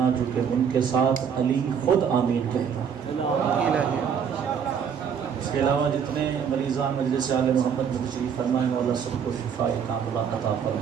جو کہ ان کے ساتھ علی خود آمین کہتا۔ اس کے علاوہ جتنے مریضان مجلس آل محمد میں تشریف فرمائے مولا سب کو شفاء کاملہ عطا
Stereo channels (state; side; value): quieter; left; 7.4 dB